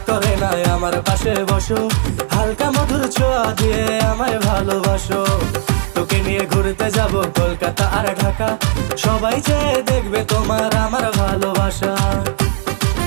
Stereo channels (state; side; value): silent; left; digital silence